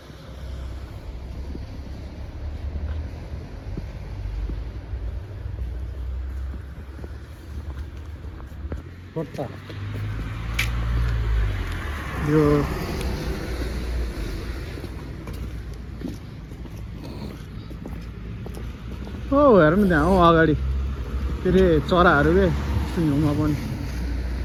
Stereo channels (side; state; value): both; identical; correlation 1.00